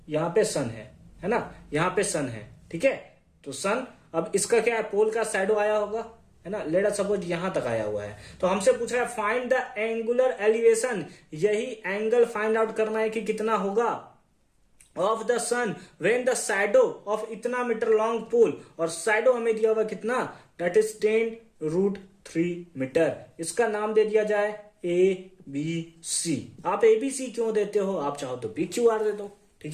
यहां पे सन है ना, यहां पे सन है, ठीक है। तो सन, अब इसका क्या है, पोल का शैडो आया होगा, है ना, लेट अस सपोज यहां तक आया हुआ है, तो हमसे पूछ रहा है फाइंड द एंगुलर एलिवेशन, यही एंगल फाइंड आउट करना है कि कितना होगा of the sun when the shadow of इतना मीटर लॉन्ग पोल, और शैडो हमें दिया हुआ कितना, दैट इज 10√3 मीटर। इसका नाम दे दिया जाए ABC। आप ABC क्यों देते हो, आप चाहो तो PQR दे दो,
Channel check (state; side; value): identical; both; correlation 1.00